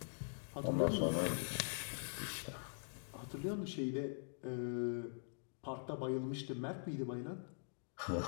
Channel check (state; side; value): silent; right; digital silence